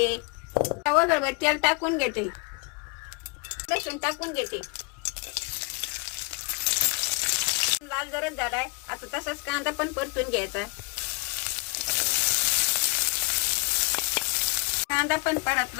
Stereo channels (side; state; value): right; quieter; 29.3 dB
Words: वगैरे तेल टाकून घेते. लसूण टाकून घेते. लाल जरच झालाय. आता तसाच कांदा पण परतून घ्यायचा. कांदा पण